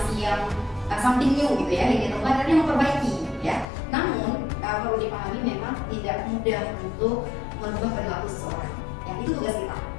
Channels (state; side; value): drops out; right; at 3.7 s